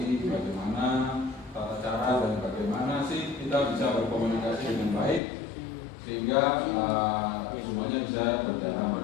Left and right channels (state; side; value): drops out; right; at 5.2 s